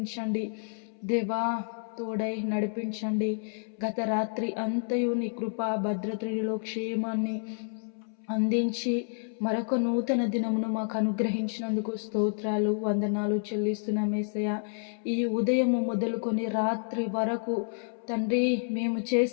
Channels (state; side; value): silent; right; 58 dB below the other